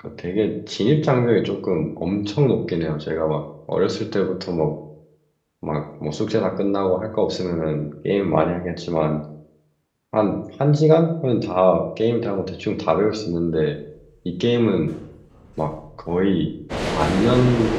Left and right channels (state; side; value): identical; both; correlation 1.00